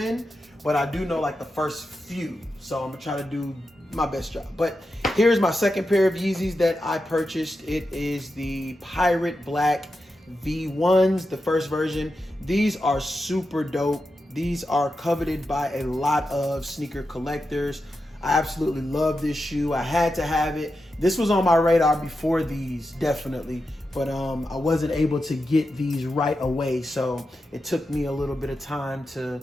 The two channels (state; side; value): normal; both; correlation 0.89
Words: but I do know like the first few. So I'm gonna try to do my best job. But here's my second pair of Yeezys that I purchased. It is the Pirate Black V1s, the first version. These are super dope. These are coveted by a lot of sneaker collectors. I absolutely love this shoe. I had to have it. This was on my radar before these, definitely, but I wasn't able to get these right away. So it took me a little bit of time to,